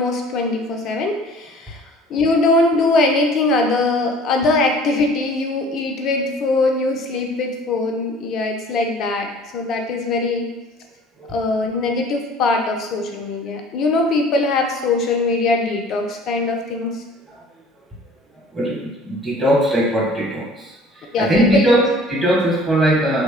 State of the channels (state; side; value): normal; both; correlation 0.49